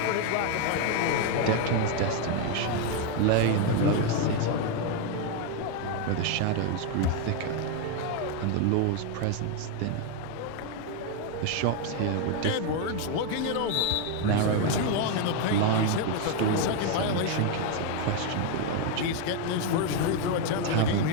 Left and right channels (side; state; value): both; different; correlation 0.01